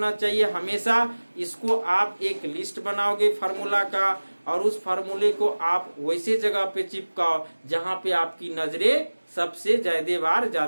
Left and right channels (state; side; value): inverted; both; correlation -1.00